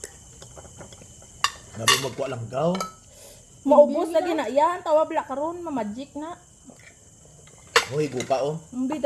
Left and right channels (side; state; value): both; identical; correlation 1.00